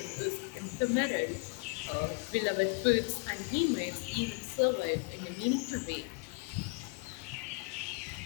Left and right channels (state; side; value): quieter; right; 31.0 dB